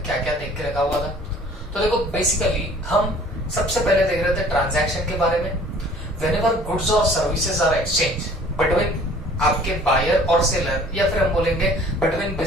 क्या क्या देख के रखा हुआ था। तो देखो, बेसिकली हम सबसे पहले देख रहे थे ट्रांजैक्शन के बारे में। व्हेनेवर गुड्स और सर्विसेज आर एक्सचेंज बिटवीन आपके बायर और सेलर, या फिर हम बोलेंगे बिटवीन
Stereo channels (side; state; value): both; normal; correlation 0.51